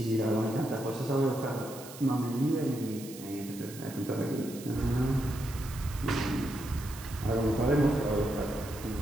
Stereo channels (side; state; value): right; noise; hiss, 15 dB below the sound